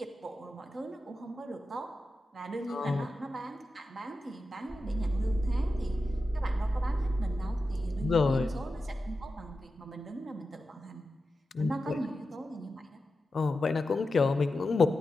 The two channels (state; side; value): normal; both; correlation 0.91